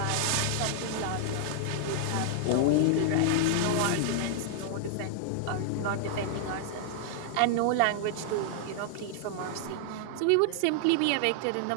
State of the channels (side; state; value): both; different; correlation -0.01